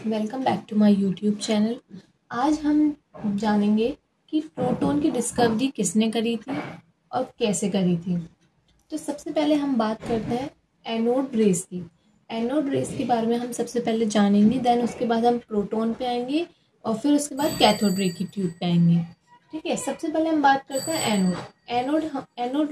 welcome back to my YouTube channel. आज हम जानेंगे कि प्रोटॉन की डिस्कवरी किसने करी थी और कैसे करी थी। तो सबसे पहले हम बात करते हैं एनोड रेस की। एनोड रेस के बारे में हम सबसे पहले जानेंगे, देन उसके बाद हम प्रोटॉन पे आएंगे और फिर उसके बाद कैथोड रे की ट्यूब पे आएंगे। ठीक है, सबसे पहले हम बात करते हैं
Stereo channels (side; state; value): both; identical; correlation 1.00